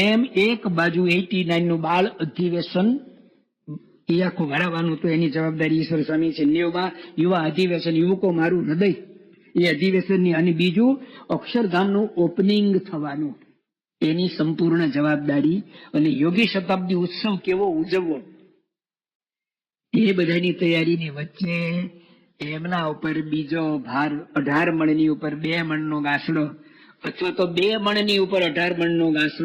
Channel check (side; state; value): both; identical; correlation 1.00